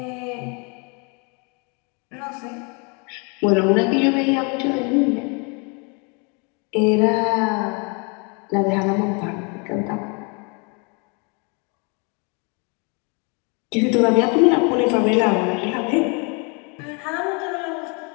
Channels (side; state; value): right; quieter; 33.4 dB